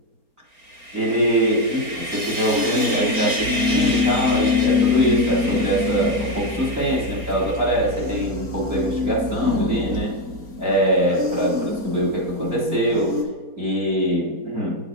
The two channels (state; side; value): late; left; 4.3 ms